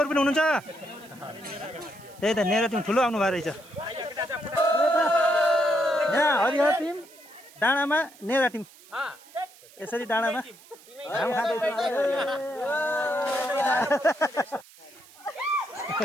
पनि हुनुहुन्छ त्यही त नेरा टिम ठुलो आउनु भएको रहेछ यहाँ हरिहर टिम डाँडामा नेरा टिम यसरी डाँडामा घाम खाँदैछ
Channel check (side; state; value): right; noise; hiss, 23 dB below the sound